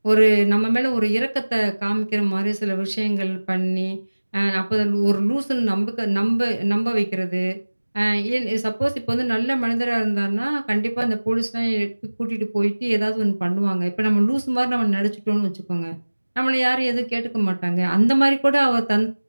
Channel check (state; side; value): inverted; both; correlation -1.00